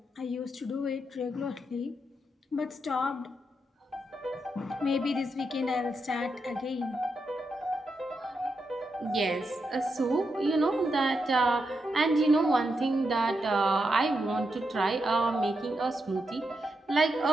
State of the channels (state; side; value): normal; both; correlation 0.84